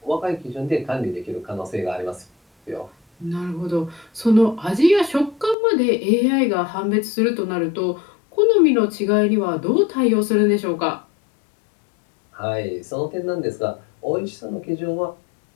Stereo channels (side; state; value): right; drops out; at 5.6 s